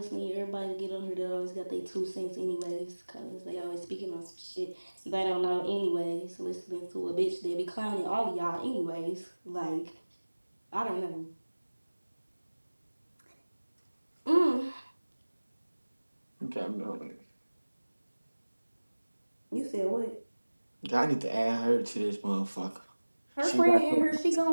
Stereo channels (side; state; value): both; inverted; correlation -1.00